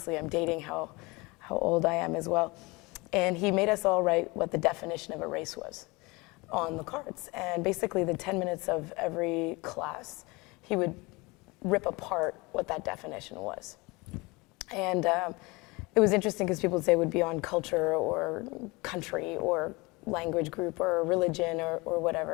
I'm dating how old I am as well. And he made us all write what the definition of a race was on the cards. And basically the 10 minutes of every class, he would rip apart what that definition was. And it was interesting because people would say it would be on culture or country or language group or religion or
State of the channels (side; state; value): right; quieter; 24.9 dB